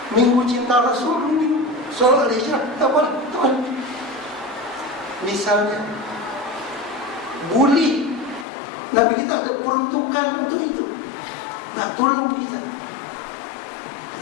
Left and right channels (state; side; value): drops out; right; at 8.5 s